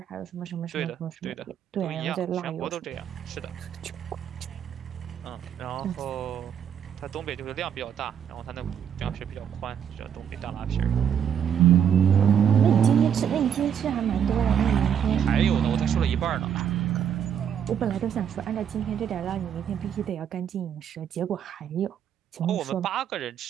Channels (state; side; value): quieter; left; 8.5 dB